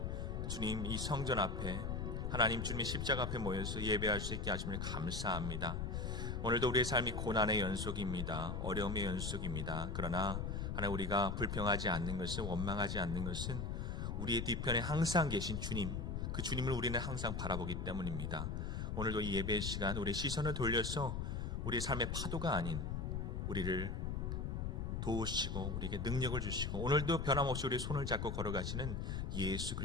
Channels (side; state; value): left; noise; rumble, 2 dB below the sound